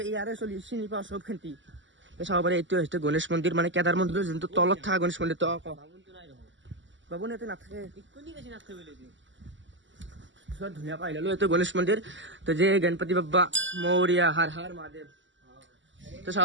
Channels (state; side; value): late; left; 0.54 ms